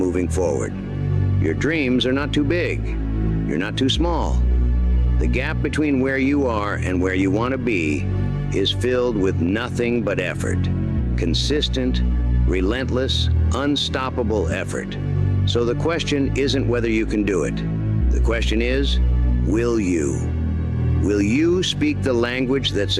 forward. Your dreams are not too big. You're not too small. The gap between where you are and where you want to be is filled with nothing but effort. Consistent, relentless, unstoppable effort. So the question isn't whether you can do it. The question is, will you? Will you speak the language that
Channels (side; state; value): both; identical; correlation 1.00